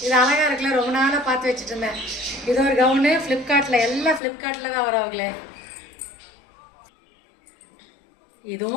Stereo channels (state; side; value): drops out; right; at 4.2 s